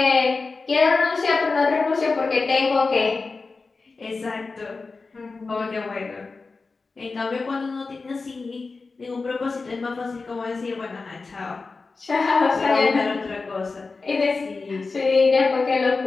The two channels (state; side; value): quieter; right; 4.1 dB